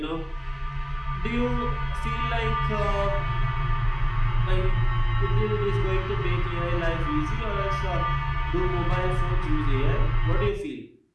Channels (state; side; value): identical; both; correlation 1.00